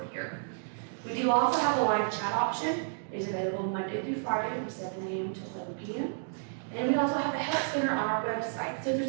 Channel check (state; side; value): silent; left; digital silence